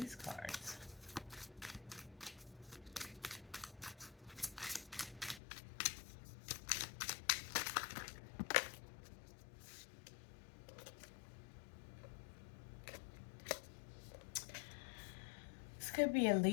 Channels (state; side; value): drops out; right; at 5.4 s